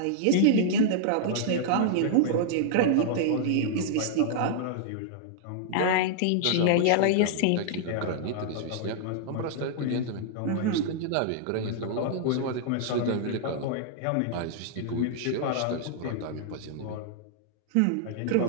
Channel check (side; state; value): both; different; correlation -0.01